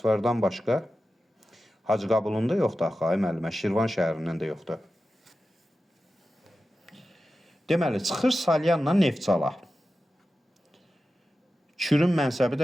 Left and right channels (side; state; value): both; normal; correlation 0.93